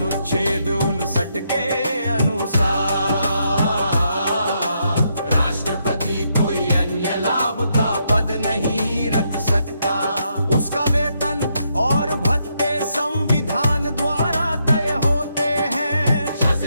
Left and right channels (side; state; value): both; inverted; correlation -0.78